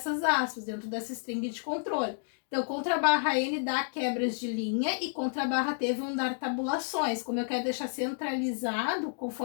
aspas, dentro dessa string de controle. Então, /n dá quebras de linha e /t vão dar tabulações. Como eu quero deixar centralizado,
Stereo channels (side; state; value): right; silent; digital silence